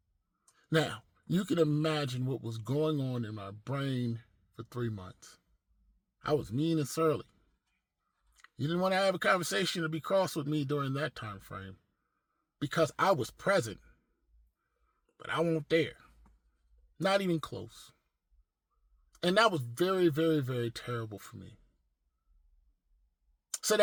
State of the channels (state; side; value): identical; both; correlation 1.00